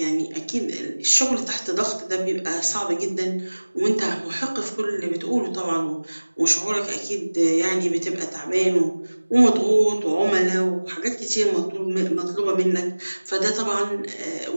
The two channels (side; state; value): both; inverted; correlation -1.00